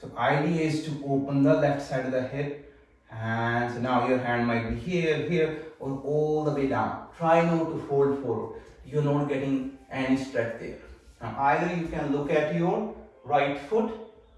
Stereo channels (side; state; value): both; identical; correlation 1.00